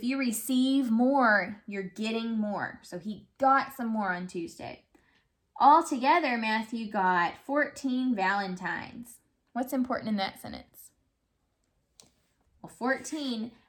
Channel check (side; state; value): both; identical; correlation 1.00